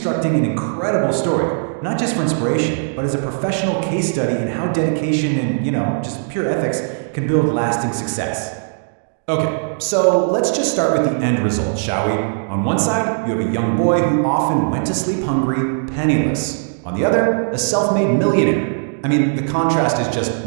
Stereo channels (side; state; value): left; silent; digital silence